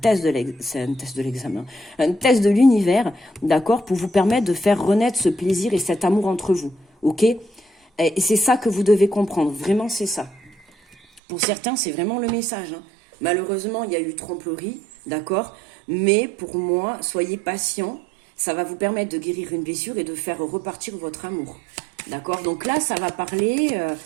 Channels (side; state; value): left; drops out; at 11.2 s